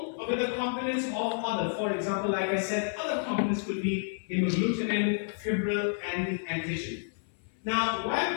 with the components of other, for example, like I said, other components could be hemagglutinin, fibril, and the antigen. Now,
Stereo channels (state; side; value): silent; right; 56 dB below the other